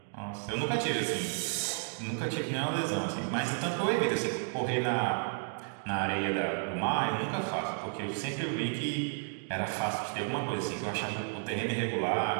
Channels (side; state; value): left; silent; 56 dB below the other